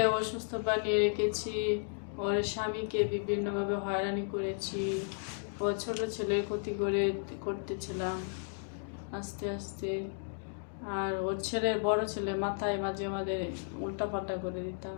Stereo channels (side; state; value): right; silent; digital silence